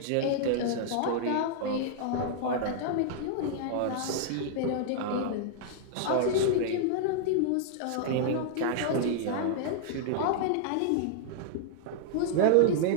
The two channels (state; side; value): different; both; correlation -0.01